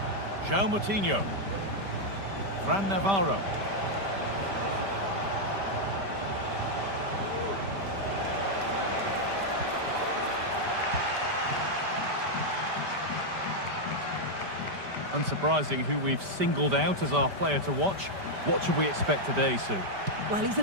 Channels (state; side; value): late; left; 5.1 ms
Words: João Moutinho. Fran Navarro. Unsurprising who we've singled out as our player to watch. What should we expect today, Sue? Well, he's